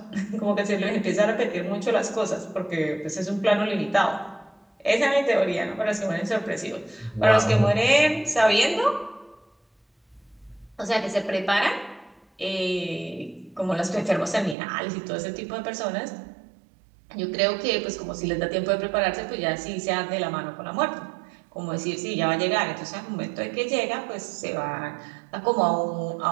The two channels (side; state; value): left; drops out; at 14.6 s